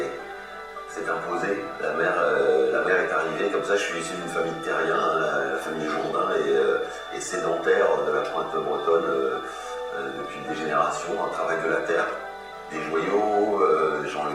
imposée, la mer est arrivée, comme ça je suis issu d'une famille de terriens, hein, la famille Jourdain et sédentaire de la pointe bretonne depuis des générations, un travail de la terre, des joyaux, Jean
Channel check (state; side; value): identical; both; correlation 1.00